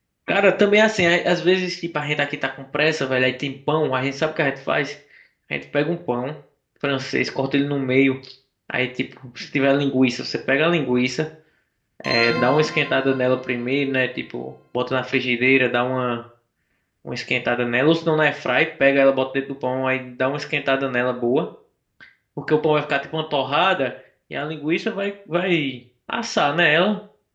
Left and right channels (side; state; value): both; identical; correlation 1.00